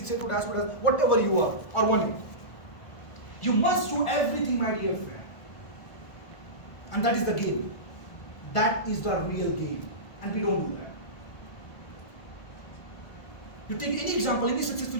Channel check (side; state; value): right; late; 1.4 ms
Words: dashboard, whatever you are, or 1A. You must do everything, my dear friend. And that is the game. That is the real game. And we don't do that. You take any example, any